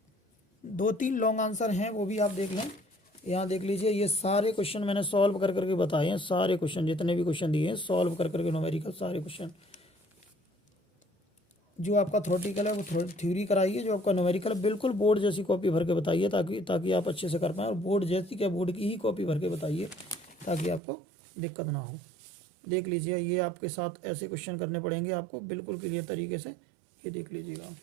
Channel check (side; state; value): left; drops out; at 20.8 s